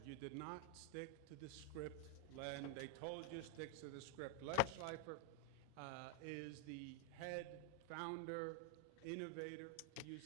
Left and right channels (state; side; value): different; both; correlation 0.00